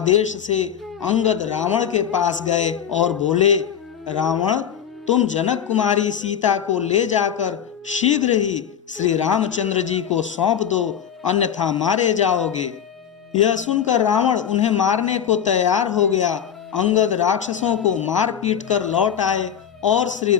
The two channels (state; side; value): quieter; right; 8.7 dB